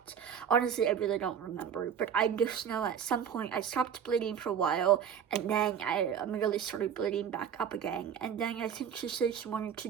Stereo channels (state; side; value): quieter; left; 8.1 dB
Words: Honestly, I really don't remember, but I just know at some point I stopped bleeding for a while, and then I immediately started bleeding back up again. And then I think she said she wanted to